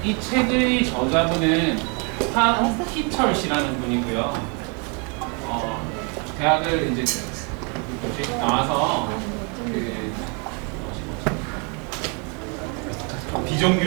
이 책의 저자분은 한희철 씨라는 분이고요. 대학을 이제 나와서 그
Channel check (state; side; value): quieter; left; 34.3 dB